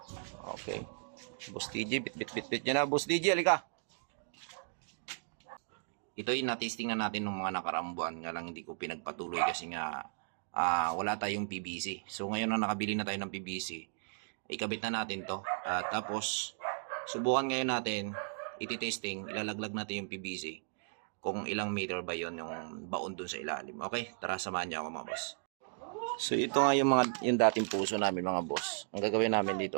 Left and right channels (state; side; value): silent; left; digital silence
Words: Okay. Boss DJ, bit niya na. Boss DJ, halika. Ito ay na-testing na natin ng mga nakaraang buwan. Nga lang hindi ko pinagpatuloy kasi nga wala tayong PVC. So ngayon na nakabili na tayo ng PVC, ikabit na natin to. Tapos subukan ngayon natin, iti-testing, ilalaglag natin yung PVC kung ilang meter ba yon yung baon dun sa ilalim. Okay, tara samahan niyo ako mga boss. So ito nga yung dating puso namin mga boss. Ang gagawin namin